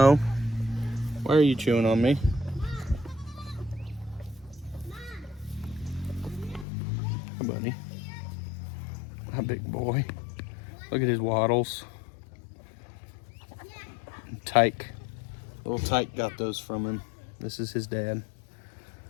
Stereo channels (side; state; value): right; drops out; at 6.7 s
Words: why are you chewing on me? Hi, buddy. Hi, big boy. Look at his waddles. Tyke. Little Tyke got those from him. This is his dad.